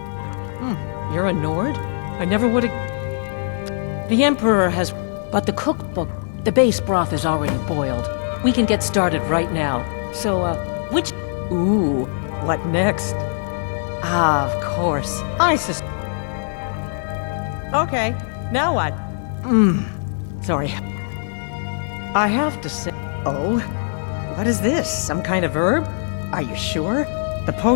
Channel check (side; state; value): right; silent; digital silence